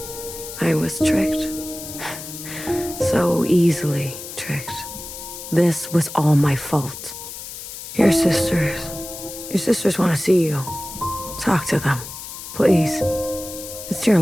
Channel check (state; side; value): noise; left; hiss, 11 dB below the sound